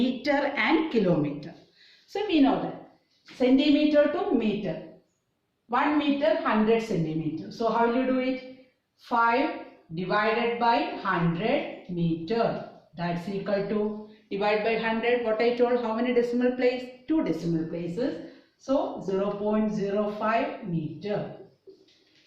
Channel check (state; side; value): identical; both; correlation 1.00